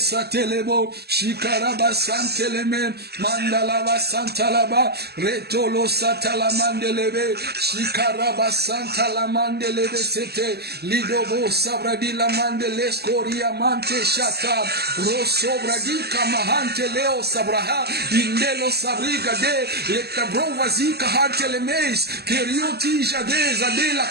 shikaraba santeleme mandala basanta la ba retolo satala mandelebe shikaraba santa la mandelebe sete lidobo sabradi la mandele skoria mante shata rosobra di kamahante leo sabraha indelo sabriga de letabrova zika hante le meis kerioti jade zade la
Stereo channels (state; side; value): late; left; 0.47 ms